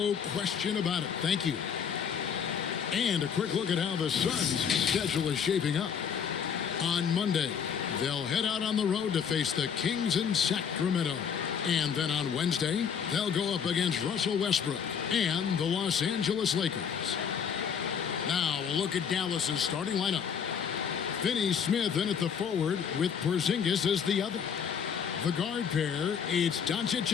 question about it. Thank you. And a quick look at how the Suns' schedule is shaping up. On Monday, they'll head out on the road to face the Kings in Sacramento. And then on Wednesday, they'll go up against Russell Westbrook and the Los Angeles Lakers. Now, we'll look at Dallas's starting lineup. Finney Smith in at the forward with Porzingis as the other. The guard pair, it's Doncic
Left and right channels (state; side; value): quieter; right; 7.3 dB